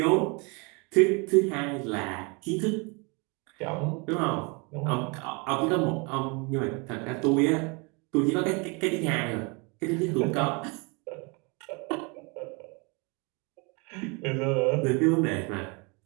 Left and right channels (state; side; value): quieter; left; 30.6 dB